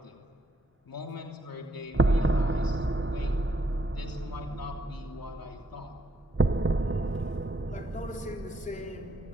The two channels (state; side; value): normal; both; correlation 0.74